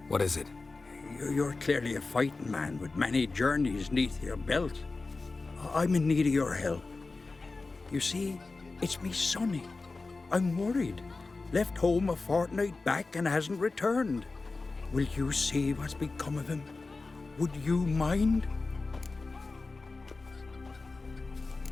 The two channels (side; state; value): right; quieter; 3.7 dB